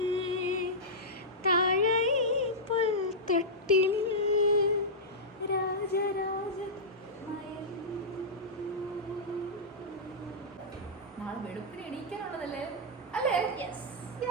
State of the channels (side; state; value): both; normal; correlation -0.11